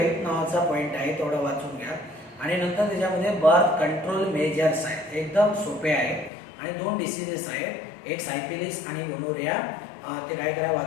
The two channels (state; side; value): drops out; right; at 6.3 s